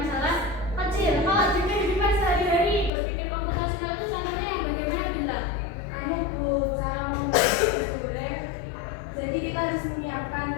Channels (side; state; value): right; drops out; at 2.9 s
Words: kecil. Kalau di kehidupan sehari-hari berpikir komputasional itu contohnya yang bagaimana, Bintang? Bu, cara membuat nasi goreng. Jadi kita harus menyiapkan